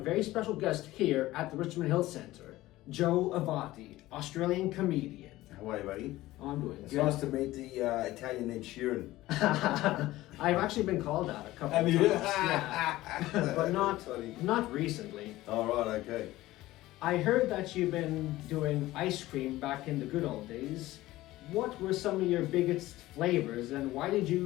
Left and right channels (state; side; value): quieter; right; 16.9 dB